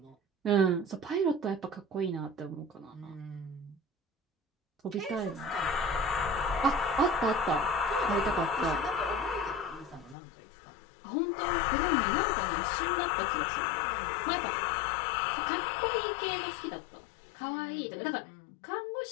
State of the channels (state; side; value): drops out; right; at 10.2 s